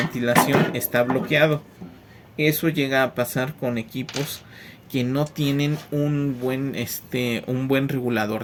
está bloqueado. Eso llega a pasar con equipos que no tienen un buen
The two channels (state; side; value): identical; both; correlation 1.00